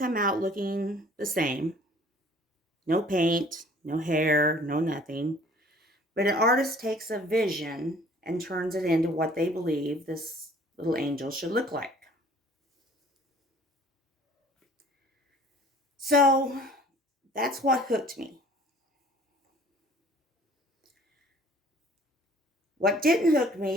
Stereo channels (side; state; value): both; normal; correlation 0.53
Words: out looking the same. No paint, no hair, no nothing. But an artist takes a vision and turns it into what they believe this little angel should look like. So that's what hooked me. What didn't hook